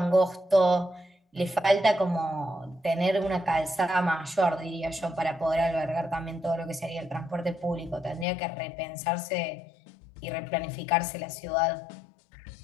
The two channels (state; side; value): drops out; right; at 8.2 s